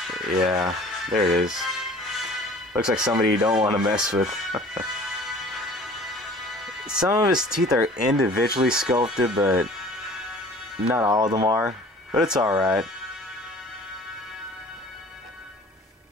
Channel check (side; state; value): both; normal; correlation 0.47